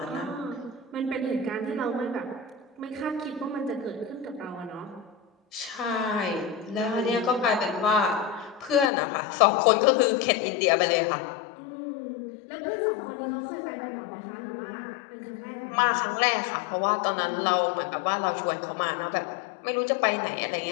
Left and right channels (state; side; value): drops out; right; at 8.9 s